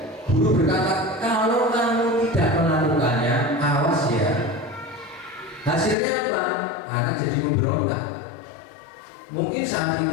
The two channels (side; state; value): right; drops out; at 6.0 s